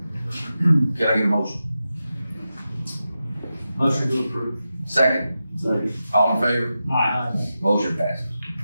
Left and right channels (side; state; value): both; inverted; correlation -0.91